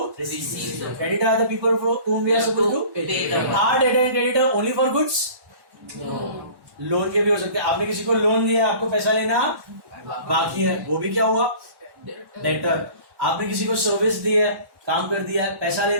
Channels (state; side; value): late; left; 1.1 ms